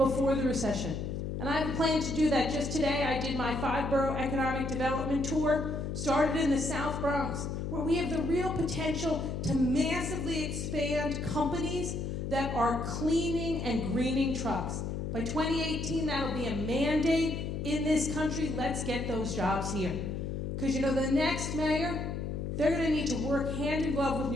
the recession. And I have a plan to do that. Just today, I did my 5-borough economic development tour, started in the South Bronx, where we have the real potential to massively expand companies that are cleaning and greening trucks. By 2018, that'll be a mandate in this country. Let's get those jobs here. Because you know, the next mayor, they're going to need to work hand in glove with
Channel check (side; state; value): left; noise; hum, 4 dB below the sound